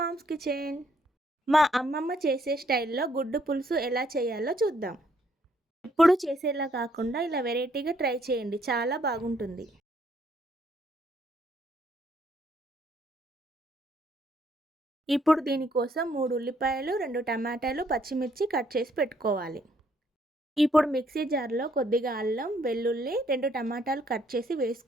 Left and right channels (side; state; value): both; normal; correlation 0.69